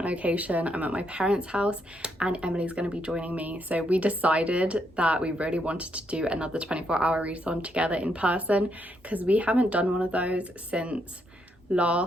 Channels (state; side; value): normal; both; correlation 0.77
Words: location. I'm at my parents' house and Emily's going to be joining me. So we decided that we really wanted to do another 24-hour readathon together in person because we haven't done one of those since